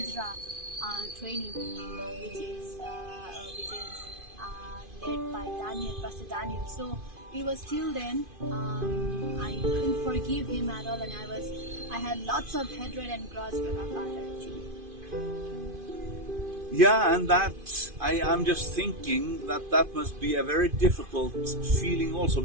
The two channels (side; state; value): left; late; 2.5 ms